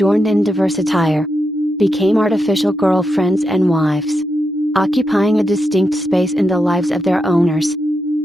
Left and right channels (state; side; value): normal; both; correlation 0.85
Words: in diverse attire, became artificial girlfriends and wives, occupying a distinct space in the lives of their owners.